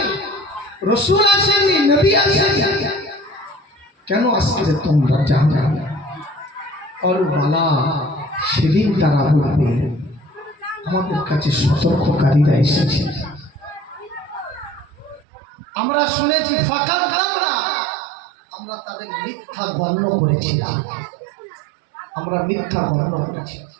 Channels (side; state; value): left; drops out; at 15.2 s